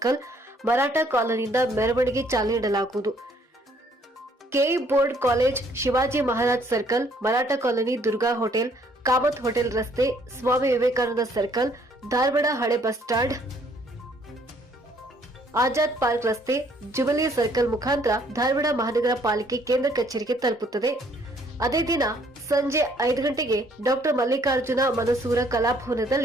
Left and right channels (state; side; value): normal; both; correlation 0.64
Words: ಮರಾಠ ಕಾಲೋನಿಯಿಂದ ಮೆರವಣಿಗೆ ಚಾಲನೆ ನೀಡಲಾಗುವುದು. KE board college, Shivaji Maharaj circle, Maratha colony, Durga hotel, Kamat hotel ರಸ್ತೆ, ಸ್ವಾಮಿ ವಿವೇಕಾನಂದ ಸರ್ಕಲ್, ಧಾರವಾಡ ಹಳೆ ಬಸ್ ಸ್ಟಾಂಡ್, ಆಜಾದ್ ಪಾರ್ಕ್ ರಸ್ತೆ, ಜುಬಿಲಿ ಸರ್ಕಲ್ ಮುಖಾಂತರ ಧಾರವಾಡ ಮಹಾನಗರ ಪಾಲಿಕೆ ಕೇಂದ್ರ ಕಚೇರಿಗೆ ತಲುಪುತ್ತದೆ. ಅದೇ ದಿನ ಸಂಜೆ 5 ಗಂಟೆಗೆ ಡಾ ಮಲ್ಲಿಕಾರ್ಜುನ ಮನಸೂರ